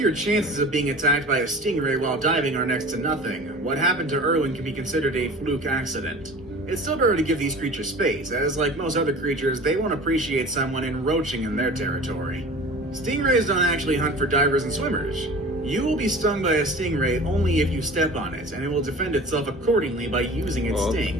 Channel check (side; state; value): both; normal; correlation 0.40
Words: chances of being attacked by a stingray while diving are next to nothing, what happened to Irwin can be considered a fluke accident. It's still better to give these creatures space, as like most other creatures, they won't appreciate someone encroaching in their territory. Stingrays don't actually hunt for divers and swimmers. You will be stung by a stingray only if you step on it, and it will defend itself accordingly by using its